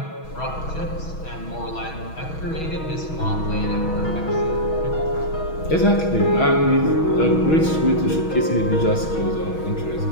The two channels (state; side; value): late; right; 6.3 ms